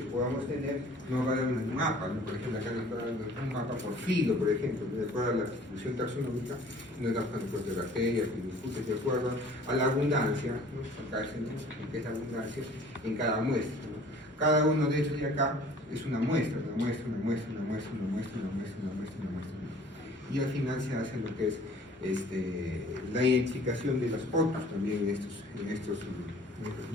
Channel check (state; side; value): normal; both; correlation 0.51